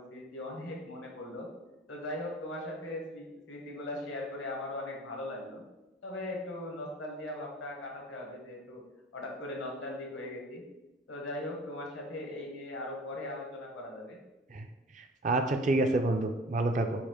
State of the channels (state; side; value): normal; both; correlation 0.44